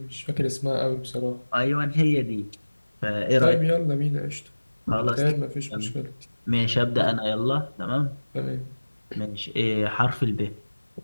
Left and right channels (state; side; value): inverted; both; correlation -1.00